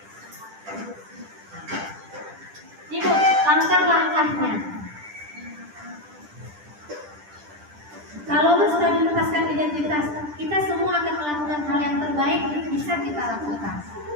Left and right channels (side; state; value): left; late; 10 ms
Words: Ibu, langkah-langkahnya. Kalau menstabilitaskan identitas, kita semua akan melakukan hal yang terbaik bisa kita lakukan.